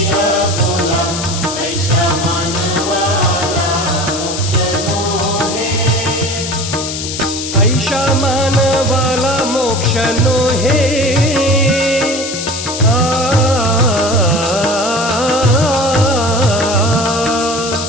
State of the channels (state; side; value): noise; left; hiss, 6 dB below the sound